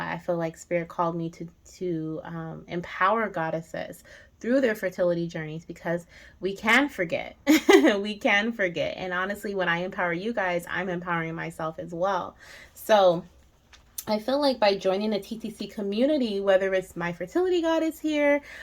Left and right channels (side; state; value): both; identical; correlation 1.00